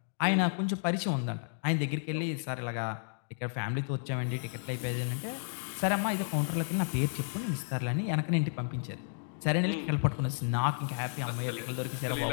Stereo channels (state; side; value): silent; right; digital silence